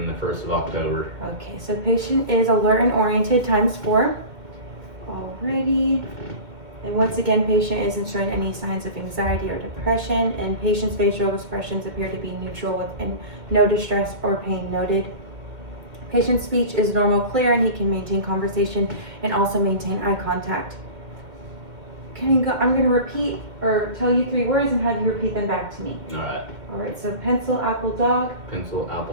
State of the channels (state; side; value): late; left; 2.1 ms